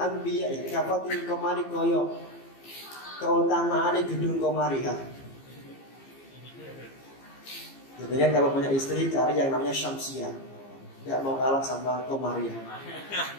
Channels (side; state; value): right; late; 15 ms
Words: kafadlil komari koyo keutamaan gedung komari ha. Jadi kalau punya istri cari yang namanya Syamsiah, tidak mau kalah sama Komariah.